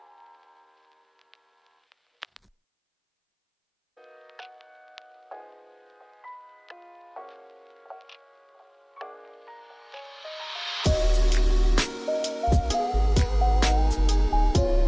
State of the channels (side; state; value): both; identical; correlation 1.00